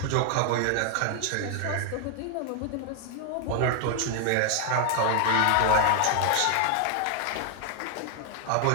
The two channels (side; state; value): both; different; correlation 0.00